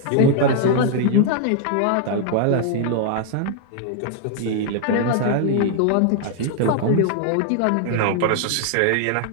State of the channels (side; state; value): both; different; correlation 0.00